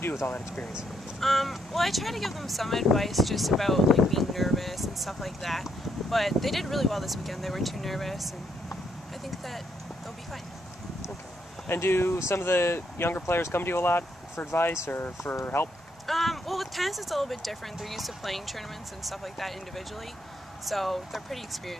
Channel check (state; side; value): normal; both; correlation 0.75